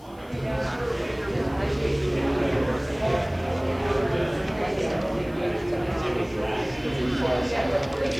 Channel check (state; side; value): noise; left; hiss, 29 dB below the sound